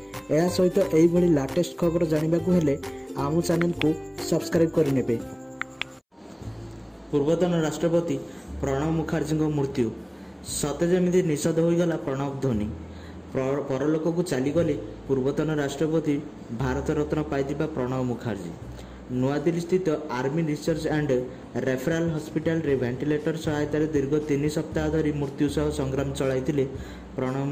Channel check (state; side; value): identical; both; correlation 1.00